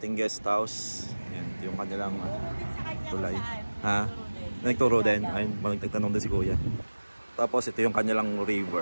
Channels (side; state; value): both; inverted; correlation -1.00